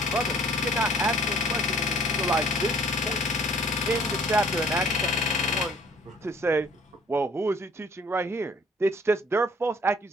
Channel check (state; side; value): normal; both; correlation 0.56